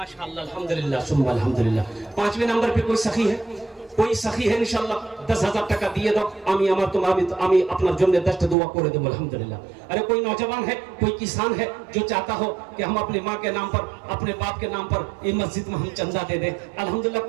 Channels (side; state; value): left; drops out; at 8.6 s